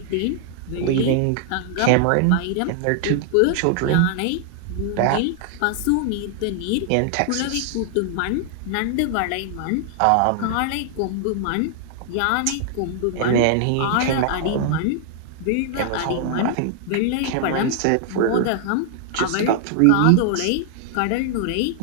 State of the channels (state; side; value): different; both; correlation 0.00